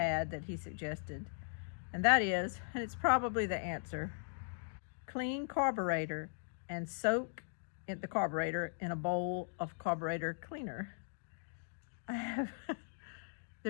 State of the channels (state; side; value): silent; right; digital silence